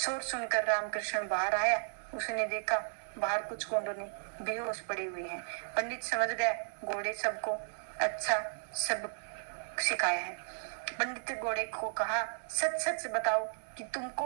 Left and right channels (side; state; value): left; silent; 55 dB below the other